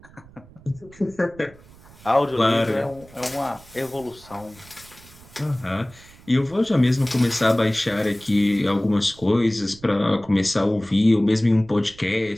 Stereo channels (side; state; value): right; noise; rumble, 23 dB below the sound